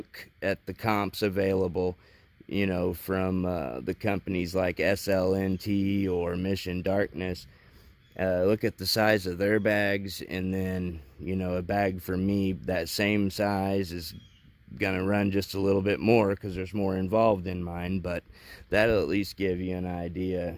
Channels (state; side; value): identical; both; correlation 1.00